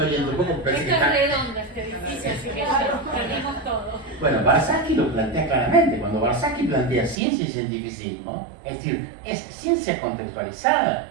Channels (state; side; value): drops out; left; at 7.2 s